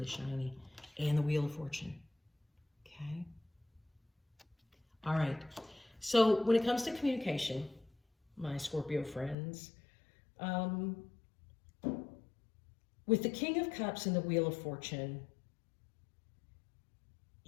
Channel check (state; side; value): drops out; right; at 9.3 s